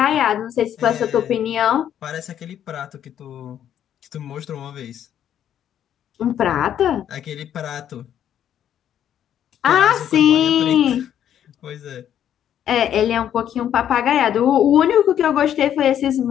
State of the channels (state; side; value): quieter; right; 10.1 dB